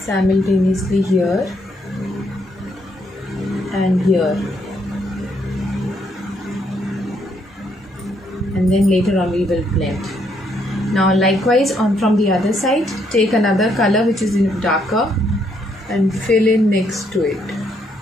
here and here. And then later on we will blend. Now likewise from the other side, take another color which is darker and fill in next to it.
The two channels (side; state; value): both; normal; correlation 0.72